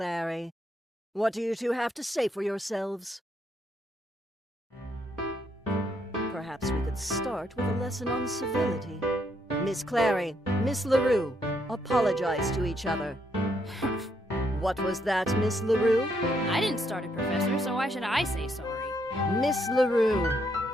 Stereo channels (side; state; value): both; normal; correlation 0.74